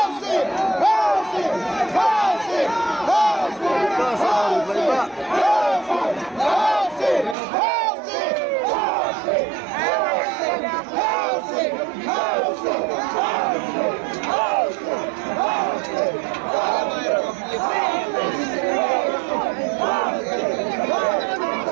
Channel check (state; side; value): drops out; left; at 7.4 s